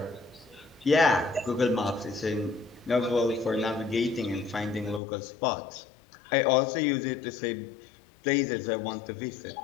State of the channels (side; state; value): right; drops out; at 5.0 s